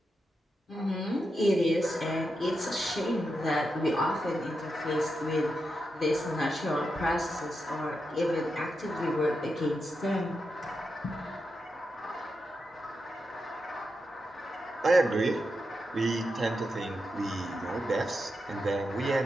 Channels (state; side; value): normal; both; correlation 0.87